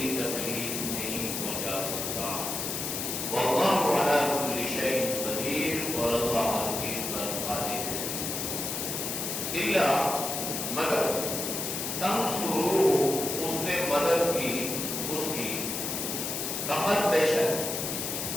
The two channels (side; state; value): left; noise; hiss, 3 dB below the sound